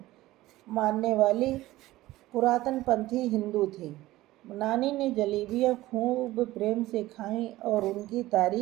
मानने वाली पुरातनपंथी हिंदू थी। नानी ने जलेबियां खूब प्रेम से खाईं और उनकी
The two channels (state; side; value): quieter; left; 17.0 dB